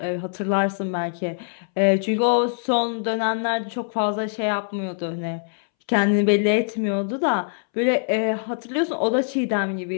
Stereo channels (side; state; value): right; silent; 63 dB below the other